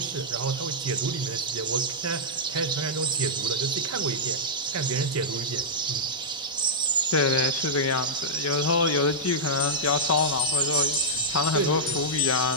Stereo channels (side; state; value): both; normal; correlation -0.09